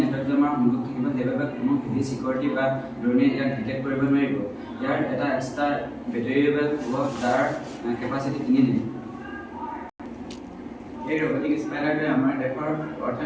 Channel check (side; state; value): both; identical; correlation 1.00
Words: নেটৱৰ্ক জমাৰ সংযোগ থাকিব, সেইবাবে কোনো হেভি চিকিউৰিটি বা ড্ৰোনে ইয়াক ডিটেক্ট কৰিব নোৱাৰিব। ইয়াৰ এটা এক্সট্ৰা বেটেৰিয়েবল হ'ব যাৰ কেপাচিটি 3 GB। এই ৰবটিক স্পাইডাৰটোৱে আমাৰ দেশৰ